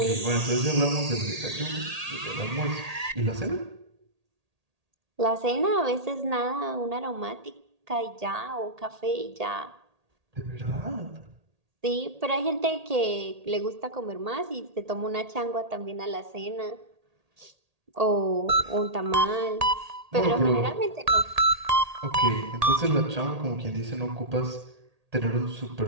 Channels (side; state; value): left; late; 1.8 ms